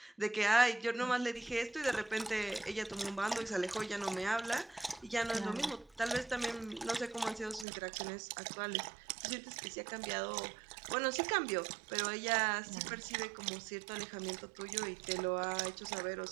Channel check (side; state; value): left; drops out; at 7.7 s